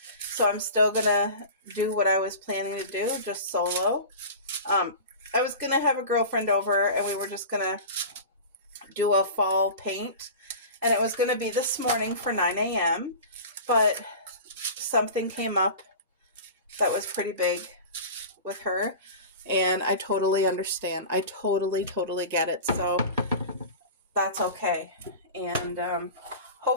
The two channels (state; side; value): inverted; both; correlation -0.34